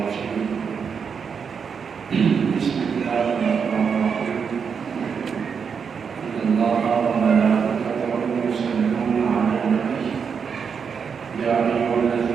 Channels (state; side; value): quieter; left; 6.4 dB